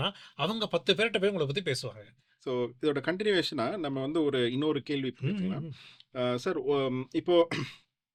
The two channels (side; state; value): both; identical; correlation 1.00